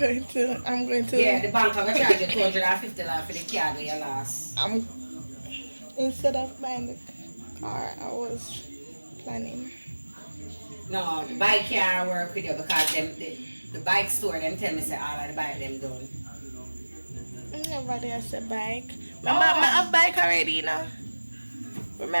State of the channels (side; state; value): both; inverted; correlation -1.00